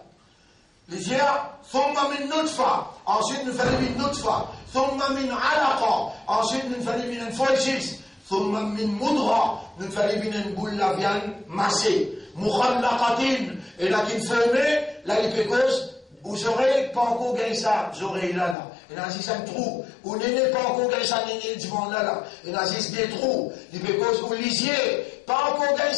Il dit là, thumma min nutfa, ensuite nous faisons min nutfa, thumma min alaqa, ensuite nous faisons min foljis, thumma min mudra, nous faisons min boule la viande massée, mukhallaqatin, et là qui formé, là il peut cause, vous aurez pas encore gagné ça, vous aurez là. Et là, si ça un trou, vous n'avez pas encore gagné ça, n'avez devant là. Et là, si des trous, il peut cause, vous lisiez, pas encore gagné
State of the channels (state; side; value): drops out; right; at 18.6 s